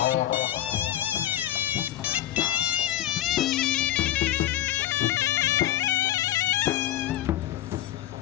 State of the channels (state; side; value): quieter; right; 13.1 dB